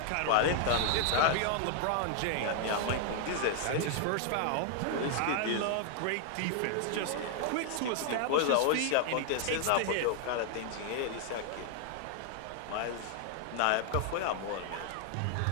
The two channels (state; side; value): different; both; correlation 0.00